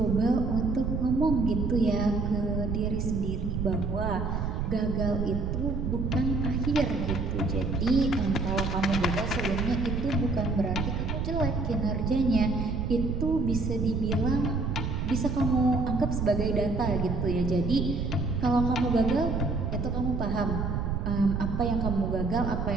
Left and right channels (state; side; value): noise; right; rumble, 1 dB below the sound